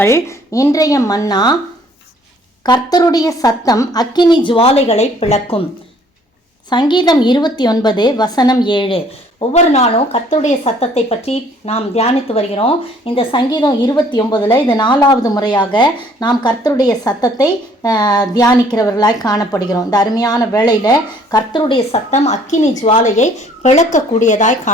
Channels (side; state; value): both; normal; correlation 0.59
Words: இன்றைய மன்னா, கர்த்தருடைய சத்தம் அக்கினி ஜுவாலைகளை பிளக்கும். சங்கீதம் 29 வசனம் 7. ஒவ்வொரு நாளும் கர்த்தருடைய சத்தத்தை பற்றி நாம் தியானித்து வருகிறோம். இந்த சங்கீதம் 29 இது 4வது முறையாக நாம் கர்த்தருடைய சத்தத்தை தியானிக்கிறவர்களாய் காணப்படுகிறோம். இந்த அருமையான வேளையில் கர்த்தருடைய சத்தம் அக்கினி ஜுவாலையை பிளக்கக்கூடியதாய்